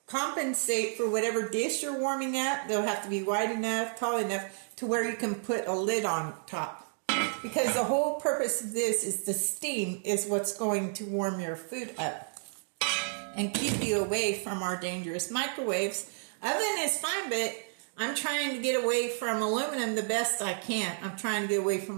compensate for whatever dish you're warming up. They'll have to be wide enough, tall enough, to where you can put a lid on top. Because the whole purpose of this is the steam is what's going to warm your food up and keep you away from our dangerous microwaves. Oven is fine, but I'm trying to get away from aluminum the best I can. I'm trying to get away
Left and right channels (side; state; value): left; silent; digital silence